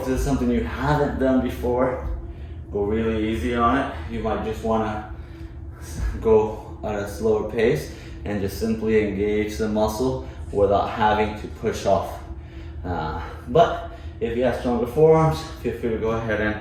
this is something you haven't done before. Go really easy on it. You might just want to go at a slower pace and just simply engage the muscle without having to push off. But if you have stronger forearms, feel free to go ahead and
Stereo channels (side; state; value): both; identical; correlation 1.00